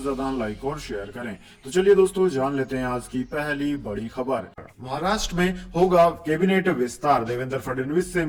ज्यादा लाइक और शेयर करें। तो चलिए दोस्तों, जान लेते हैं आज की पहली बड़ी खबर। महाराष्ट्र में होगा कैबिनेट विस्तार, देवेंद्र फडणवीस से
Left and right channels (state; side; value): identical; both; correlation 1.00